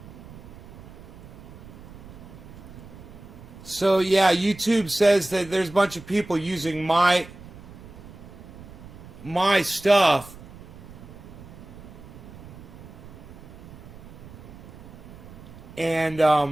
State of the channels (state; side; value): noise; right; rumble, 17 dB below the sound